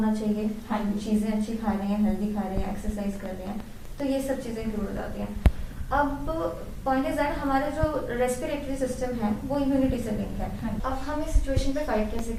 चाहिए, हम चीजें अच्छी खा रहे हैं, हेल्दी खा रहे हैं, एक्सरसाइज कर रहे हैं, तो ये सब चीजें इंक्लूड हो जाती हैं। अब पॉइंट इज दैट हमारा जो रेस्पिरेटरी सिस्टम है वो इम्यूनिटी से लिंक है। अब हम इस सिचुएशन पे फाइट कैसे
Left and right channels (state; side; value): identical; both; correlation 1.00